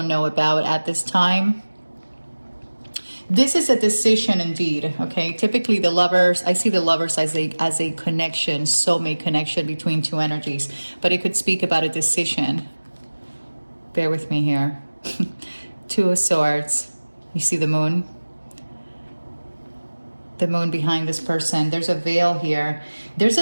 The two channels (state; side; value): inverted; both; correlation -1.00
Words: know about at this time. This is a decision indeed, okay? Typically the lovers, I see the lovers as a connection, soulmate connection between 2 energies, but it could speak about a decision. Bear with me here. 2 of Swords. You see the moon? The moon behind this person. There's a veil here. There's